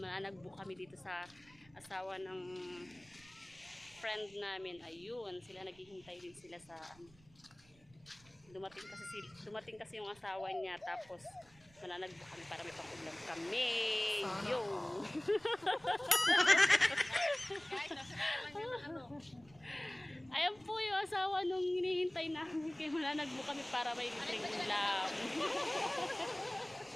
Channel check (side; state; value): right; noise; rumble, 27 dB below the sound